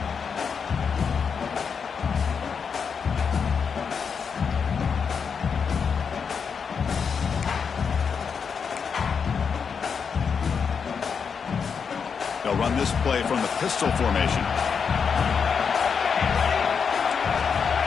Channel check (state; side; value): quieter; right; 6.2 dB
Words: They'll run this play from the pistol formation.